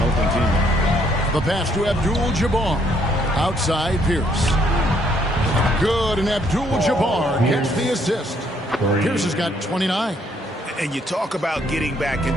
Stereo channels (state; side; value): normal; both; correlation 0.68